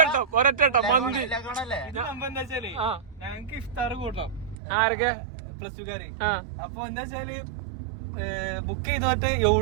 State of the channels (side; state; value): left; drops out; at 4.5 s